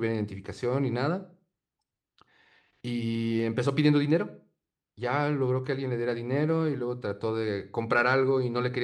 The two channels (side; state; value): both; identical; correlation 1.00